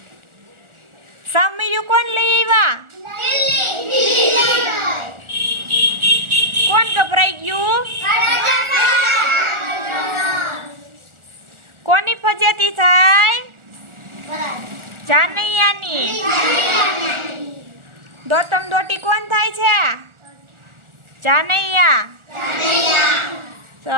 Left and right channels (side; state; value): left; late; 1.4 ms